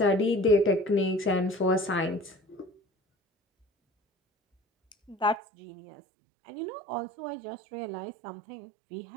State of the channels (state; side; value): drops out; left; at 5.4 s